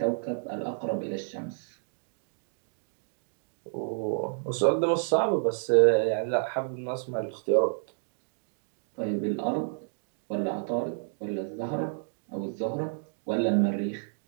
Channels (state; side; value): silent; left; digital silence